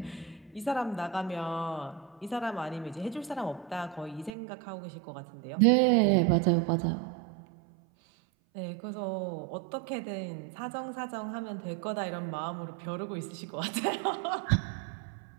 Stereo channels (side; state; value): left; drops out; at 4.3 s